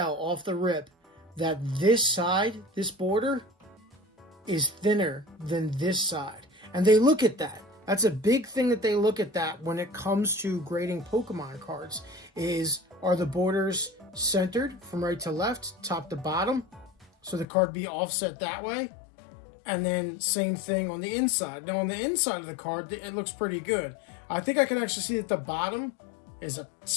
off the rip that this side, this border, is thinner than this side. And they look at that. That's a big thing that they look at that when it comes to grading Pokemon cards, are the borders centered from right to left, top to bottom, so the card be offset that way. And then same thing on the inside. Now, on the inside of the card, it looks pretty good. I think I can actually see that the bottom is a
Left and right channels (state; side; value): drops out; right; at 17.4 s